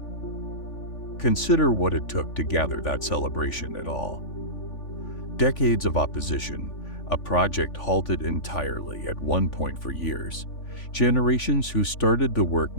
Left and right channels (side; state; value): right; late; 3.5 ms